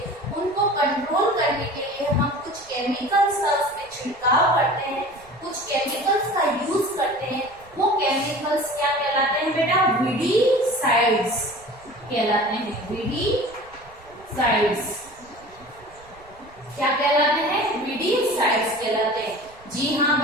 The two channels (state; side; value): noise; right; rumble, 26 dB below the sound